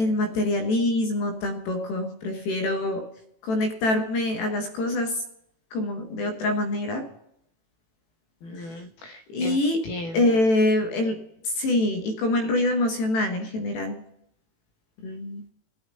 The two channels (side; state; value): right; late; 18 ms